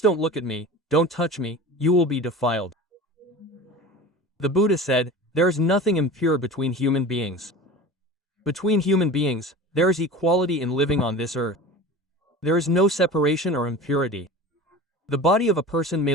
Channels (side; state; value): both; normal; correlation 0.35